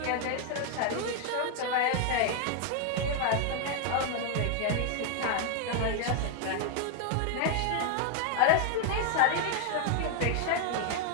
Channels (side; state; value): both; different; correlation 0.00